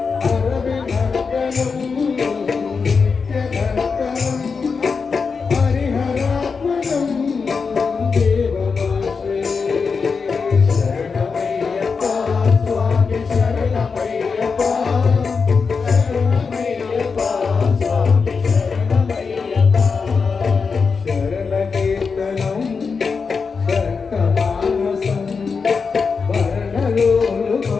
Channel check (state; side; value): quieter; right; 5.2 dB